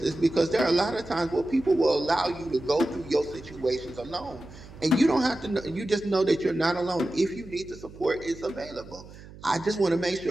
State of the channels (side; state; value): right; noise; hum, 18 dB below the sound